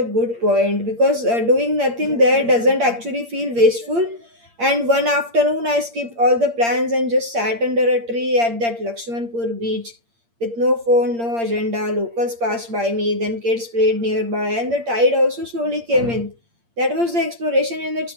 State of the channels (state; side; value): late; left; 8.6 ms